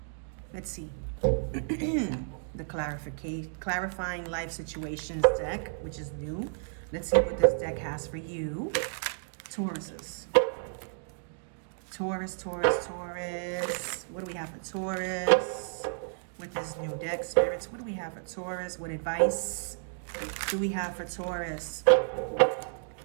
Let's see. The clarifying life situations deck, which is new. Let's see what this deck has for you. Tauruses. Taurus. What do we have for Taurus? With this new deck, spirits, what do we have for Taurus? What advice do we have for Taurus?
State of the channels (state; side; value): silent; left; digital silence